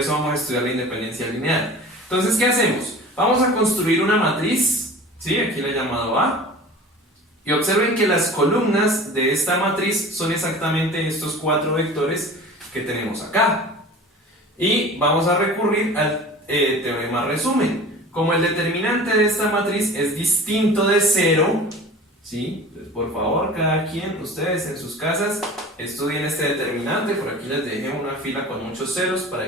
vamos a estudiar la independencia lineal. Entonces, ¿qué hacemos? Vamos a construir una matriz, ¿sí? Aquí la he llamado A. Y observen que las columnas de esta matriz son exactamente estos 4 vectores que tenemos acá. Y vamos a recurrir al teorema resumen. Como el determinante de esta matriz es distinto de 0, ¿sí? Por favor, cada quien, ustedes en sus casas, estudien este determinante. Por aquí les dejé una fila con muchos ceros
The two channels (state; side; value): normal; both; correlation 0.40